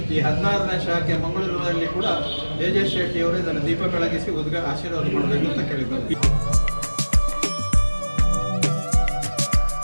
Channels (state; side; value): inverted; both; correlation -1.00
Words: ಈ 16ನೇ ಶಾಖೆ ಮಂಗಳೂರಿನಲ್ಲಿ ಕೂಡ ಎ.ಜೆ. ಶೆಟ್ಟಿಯವರು ಇದನ್ನು ದೀಪ ಬೆಳಗಿಸಿ ಆಶೀರ್ವಾದ ಮಾಡಬೇಕು ಅಂತ ಕೇಳಿದ್ದಾರೆ.